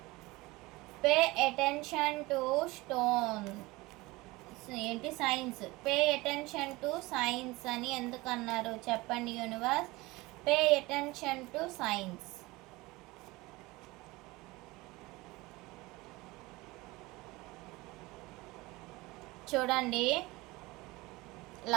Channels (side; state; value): left; quieter; 21.6 dB